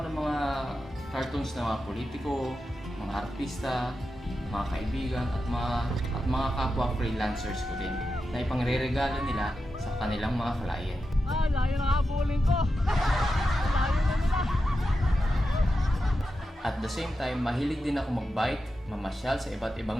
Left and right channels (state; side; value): normal; both; correlation 0.89